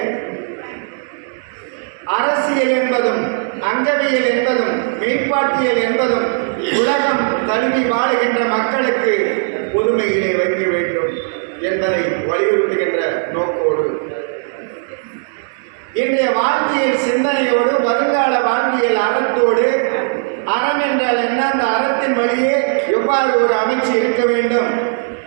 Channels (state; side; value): silent; left; digital silence